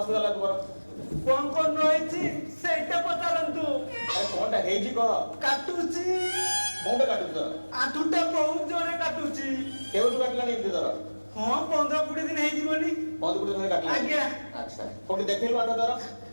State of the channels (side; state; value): both; inverted; correlation -1.00